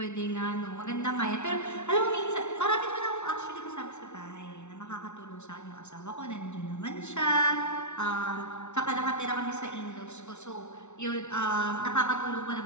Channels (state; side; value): late; right; 0.82 ms